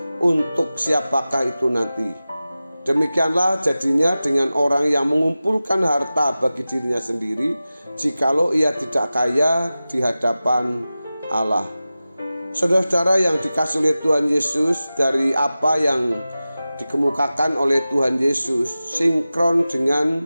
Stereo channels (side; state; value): both; inverted; correlation -0.95